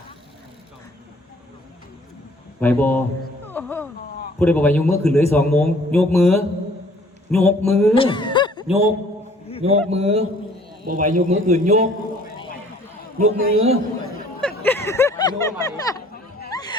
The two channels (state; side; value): normal; both; correlation 0.57